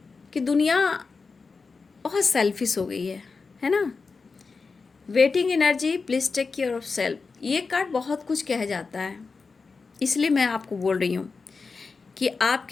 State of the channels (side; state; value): right; quieter; 4.5 dB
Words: कि दुनिया बहुत सेल्फिश हो गई है ना। Waiting energy, please take care of self, ये कार्ड बहुत कुछ कह जाता है, इसलिए मैं आपको बोल रही हूँ कि